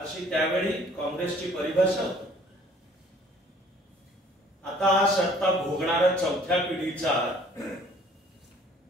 त्यावेळी काँग्रेसची परिभाषा होती. आता हा सत्ता भोगणारा चौथ्या पिढीचा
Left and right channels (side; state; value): both; normal; correlation 0.56